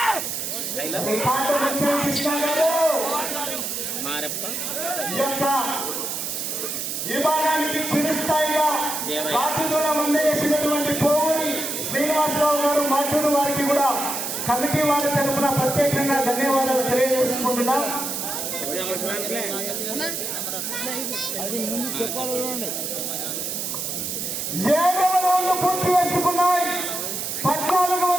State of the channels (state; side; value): noise; right; hiss, 3 dB below the sound